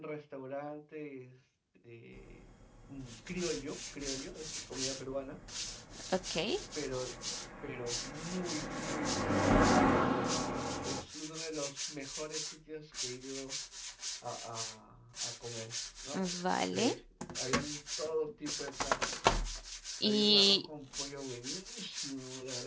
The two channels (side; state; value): both; identical; correlation 1.00